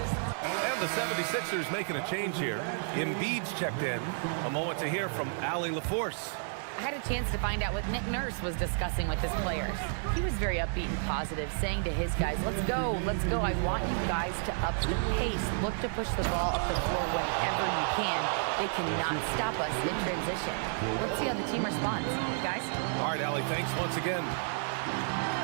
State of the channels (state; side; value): silent; left; 57 dB below the other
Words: And the 76ers making a change here. Embiid's checked in. A moment to hear from Allie LaForce. I had a chance to find out what Nick Nurse was discussing with his players. He was very upbeat and positive, saying to his guys, let's go. I want you guys to up the pace. Look to push the ball up the floor whenever you can. They cannot stop us in transition. Let's see how the team responds. Guys? All right, Allie, thanks once again.